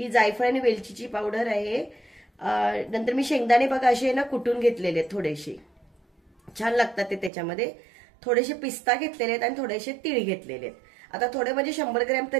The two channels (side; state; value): left; drops out; at 7.3 s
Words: जायफळ आणि वेलचीची पावडर आहे, नंतर मी शेंगदाणे बघा असे ना कुटून घेतलेले, थोडेसे छान लागतात ते त्याच्यामध्ये, थोडेसे पिस्ता घेतलेले आहेत आणि थोडेसे तीळ घेतलेले आहेत। आता थोडे म्हणजे 100 ग्रॅम